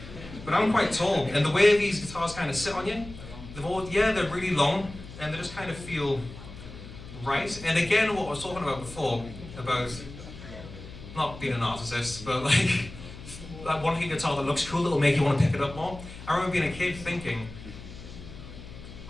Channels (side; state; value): left; noise; hum, 14 dB below the sound